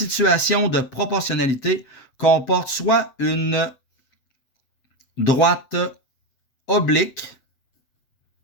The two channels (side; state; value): right; late; 7.9 ms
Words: de proportionnalité comporte soit une droite oblique.